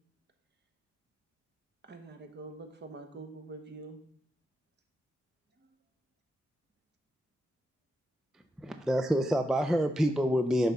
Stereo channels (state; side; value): normal; both; correlation 0.85